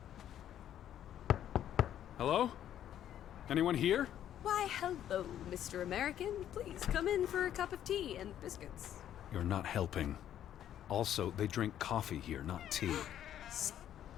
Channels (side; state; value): right; quieter; 10.8 dB